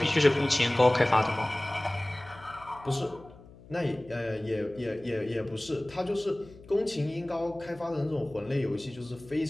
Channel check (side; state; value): left; noise; hum, 21 dB below the sound